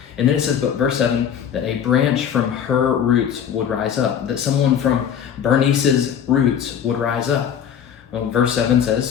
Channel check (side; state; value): right; quieter; 8.6 dB